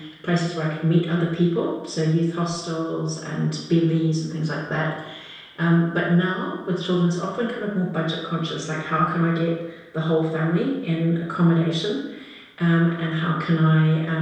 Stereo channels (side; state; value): both; identical; correlation 1.00